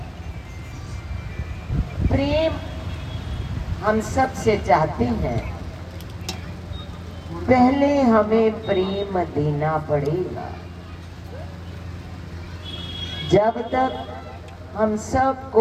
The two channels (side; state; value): both; identical; correlation 1.00